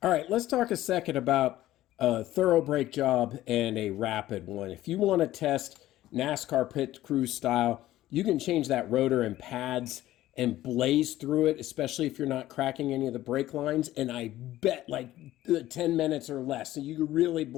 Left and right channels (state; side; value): quieter; right; 14.8 dB